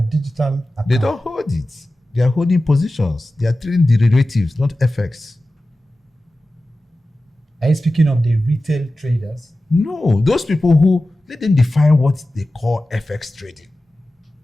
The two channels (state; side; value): normal; both; correlation 0.95